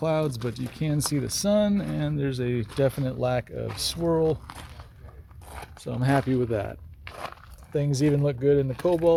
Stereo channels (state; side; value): identical; both; correlation 1.00